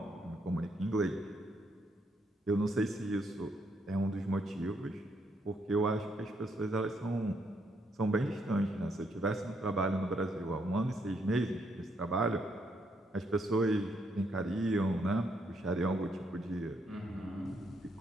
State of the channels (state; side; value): normal; both; correlation 0.75